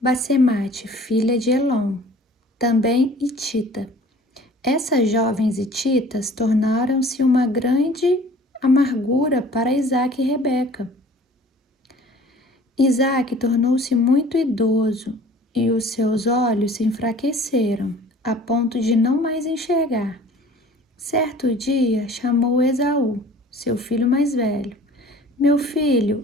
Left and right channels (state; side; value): normal; both; correlation 0.48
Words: Basemate, filha de Elon, também hitita. Essas jovens hititas tornaram-se uma grande amargura para Isaque e Rebeca. Isaque tornou-se muito idoso e os seus olhos se enfraqueceram, a ponto de não mais enxergar. Certo dia chamou Esaú, seu filho mais velho. Meu filho,